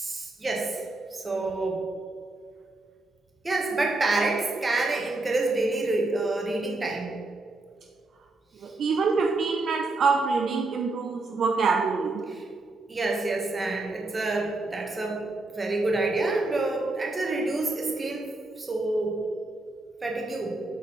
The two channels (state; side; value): quieter; left; 3.1 dB